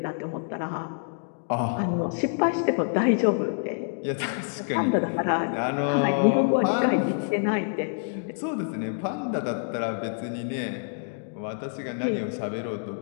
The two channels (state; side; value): silent; right; digital silence